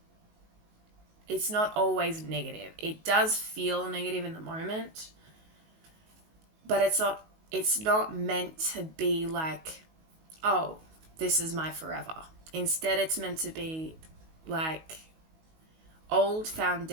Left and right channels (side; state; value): left; late; 19 ms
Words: it's not always negative. It does feel negative in the moment, but it's not meant to be like, oh, this is my forever. Instead, it's meant to be like old